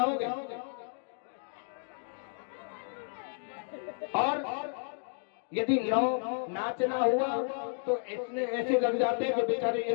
और यदि नाचना हुआ तो इतने ऐसे लग जाते हैं कि बेचारे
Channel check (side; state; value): right; silent; 56 dB below the other